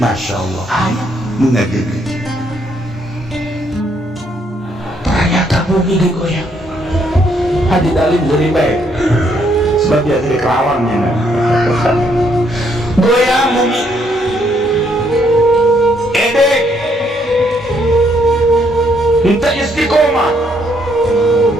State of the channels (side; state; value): both; normal; correlation 0.71